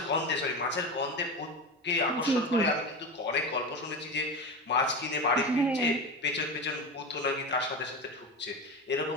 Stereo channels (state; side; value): normal; both; correlation 0.24